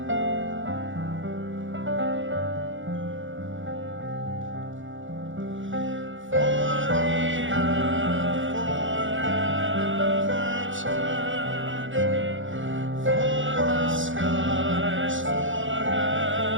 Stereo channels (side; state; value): left; late; 0.56 ms